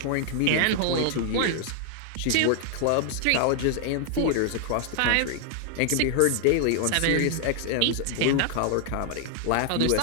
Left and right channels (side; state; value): both; different; correlation 0.00